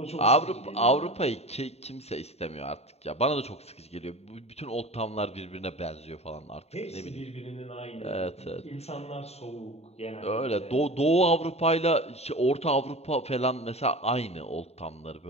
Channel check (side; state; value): right; late; 0.30 ms